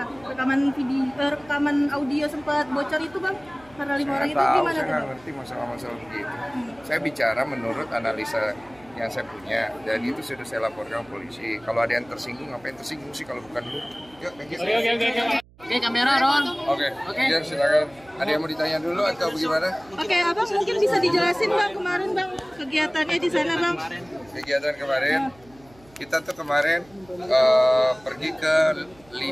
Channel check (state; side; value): noise; right; hum, 27 dB below the sound